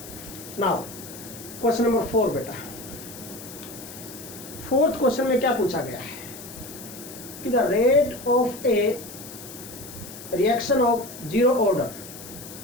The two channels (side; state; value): left; noise; hiss, 14 dB below the sound